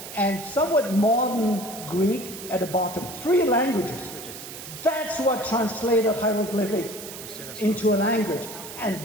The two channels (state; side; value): noise; right; hiss, 12 dB below the sound